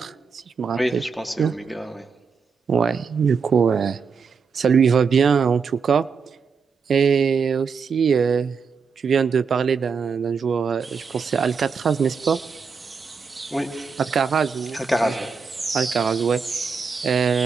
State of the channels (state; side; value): quieter; left; 5.6 dB